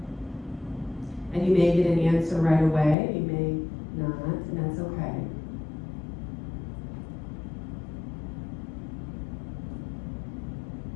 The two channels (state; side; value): drops out; right; at 3.0 s